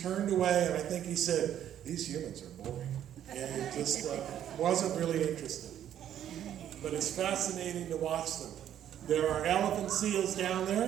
turned away, and I think he said, these humans are boring. And he just wasn't really interested. But it's fascinating to watch them. There are elephant seals down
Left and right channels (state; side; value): quieter; left; 10.6 dB